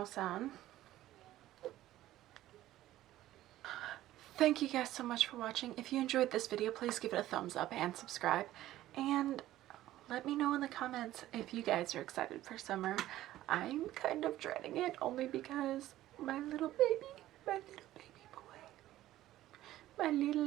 on. Thank you guys so much for watching. If you enjoyed this video, please give it a thumbs up and subscribe. And let me know in the comments if you guys are excited for summer. I'm kind of dreading it only because my little baby boy, my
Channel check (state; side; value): quieter; left; 14.5 dB